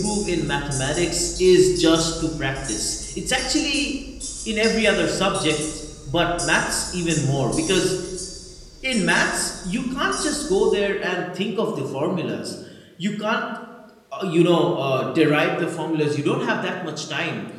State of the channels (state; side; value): identical; both; correlation 1.00